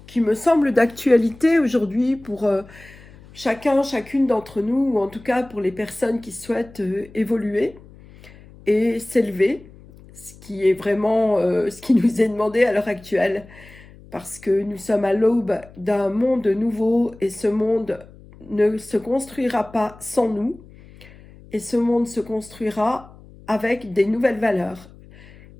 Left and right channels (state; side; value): noise; left; hum, 22 dB below the sound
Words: qui me semblent d'actualité aujourd'hui pour chacune d'entre nous, ou en tout cas pour les personnes qui souhaitent évoluer et s'élever, ce qui est vraiment ce qui nous est demandé à l'heure actuelle, parce que nous sommes à l'aube d'un monde nouveau et ce monde ne se construira pas sans nous, et ce monde se construira avec des nouvelles valeurs.